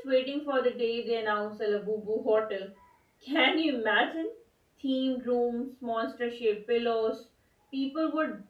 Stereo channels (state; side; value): identical; both; correlation 1.00